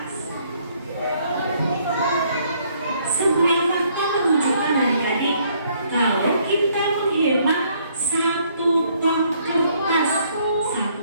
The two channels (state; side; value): inverted; both; correlation -0.66